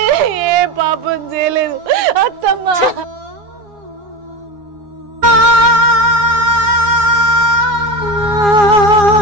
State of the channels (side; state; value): left; late; 7.3 ms